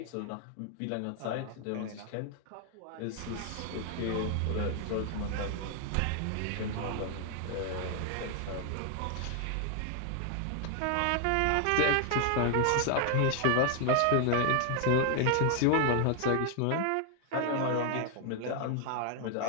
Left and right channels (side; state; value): both; different; correlation 0.00